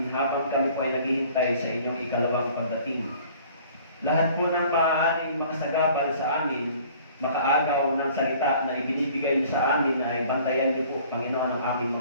habang kami po ay naghihintay sa inyong ikalawang pagdating. Lahat po ng maaaring makasagabal sa amin, makaagaw ng salita na ibinibigay niyo sa amin ay bantayan niyo po, Panginoon, ang aming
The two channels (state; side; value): inverted; both; correlation -0.52